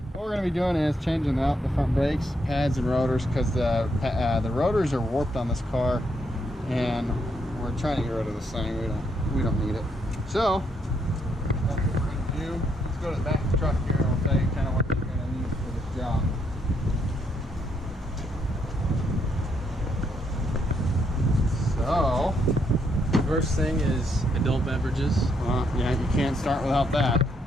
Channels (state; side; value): normal; both; correlation 0.75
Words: what we're going to be doing is changing out the front brakes, pads, and rotors, because the rotors are warped on this car, and we're trying to get rid of this thing. We don't need it. So that's what we're going to do. Let's go to the back of the truck here, and I'll tell you kind of what you're going to need for this job. So, First thing is adult beverages. Yeah, you can't start without that.